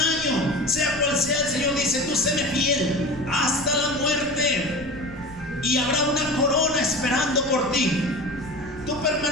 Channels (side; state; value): left; noise; rumble, 18 dB below the sound